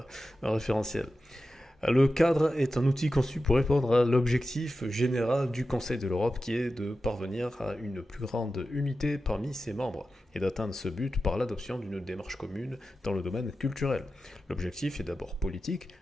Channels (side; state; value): both; normal; correlation 0.92